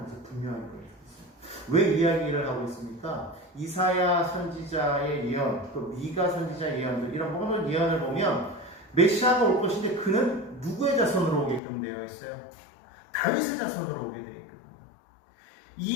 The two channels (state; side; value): drops out; right; at 11.6 s